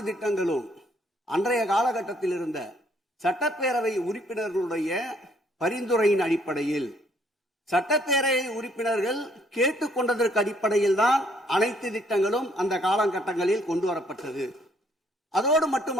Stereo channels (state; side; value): normal; both; correlation 0.66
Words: திட்டங்களும் அன்றைய காலகட்டத்தில் இருந்த சட்டப்பேரவை உறுப்பினர்களுடைய பரிந்துரையின் அடிப்படையில், சட்டப்பேரவை உறுப்பினர்கள் கேட்டுக்கொண்டதற்கு அடிப்படையில் தான் அனைத்து திட்டங்களும் அந்த காலகட்டங்களில் கொண்டு வரப்பட்டது. அதோடு